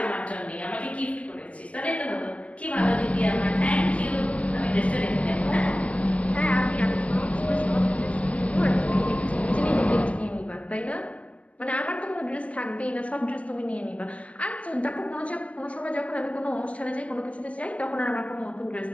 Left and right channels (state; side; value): late; right; 0.064 ms